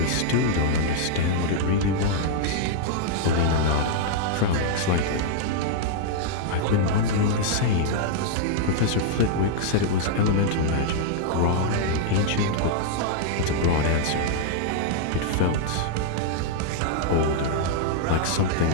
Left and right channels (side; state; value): both; different; correlation -0.01